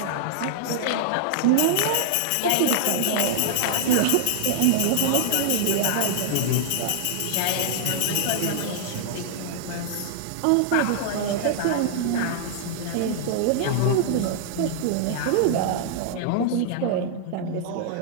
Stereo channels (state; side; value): different; both; correlation -0.01